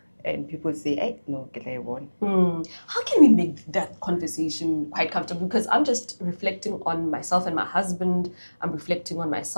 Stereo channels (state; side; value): inverted; both; correlation -1.00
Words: And people say, hey, no, get I won. How can we make that conversation quite comfortable? Because I'm just reflecting on myself and my husband. I'm reflecting on